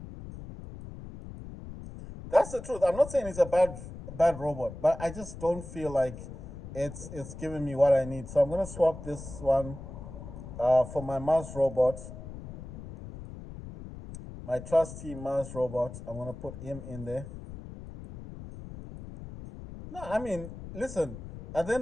That's the truth. I'm not saying it's a bad robot, but I just don't feel like it's giving me what I need. So I'm gonna swap this one for my Mars robot, my trusty Mars robot. I'm gonna put him in there. No, I mean, listen. At the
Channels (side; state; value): left; noise; rumble, 12 dB below the sound